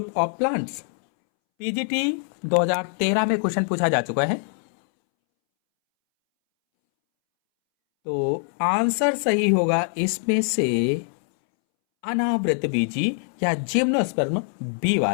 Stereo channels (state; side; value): silent; right; 63 dB below the other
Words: of plants. PGT 2013 में क्वेश्चन पूछा जा चुका है। तो आंसर सही होगा इसमें से अनावृत बीजी या जिम्नोस्पर्म बी